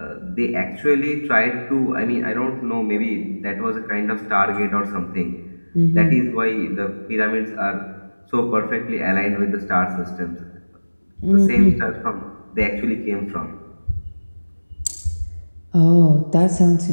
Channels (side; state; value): both; inverted; correlation -1.00